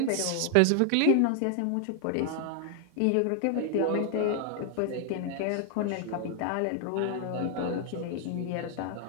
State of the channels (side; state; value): both; different; correlation 0.00